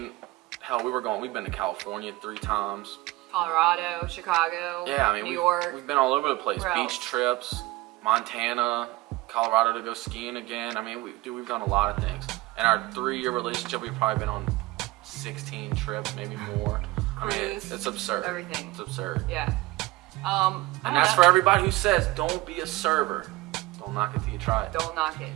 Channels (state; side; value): quieter; left; 19.6 dB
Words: hell, we've been to California 3 times. Colorado, Chicago, New York. We've been all over the place. Beach trips, Montana, Colorado to go skiing again. I mean, we've done a lot of things. In our 3-year relationship, we've probably been on 16 trips, maybe more. Cruise, I mean, it's absurd. Everything. It's absurd. Yeah. And that's for everybody who says, don't be a server. Don't knock it till you try it. Don't knock it.